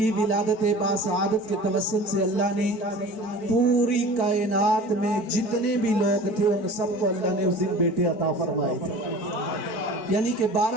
ولادت باسعادت کے توسل سے اللہ نے پوری کائنات میں جتنے بھی لوگ تھے ان سب کو اللہ نے اس دن بیٹے عطا فرمائے تھے یعنی کہ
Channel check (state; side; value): late; right; 4.5 ms